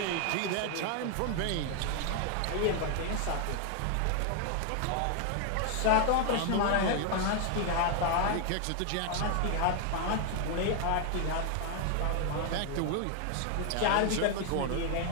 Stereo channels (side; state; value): both; different; correlation 0.00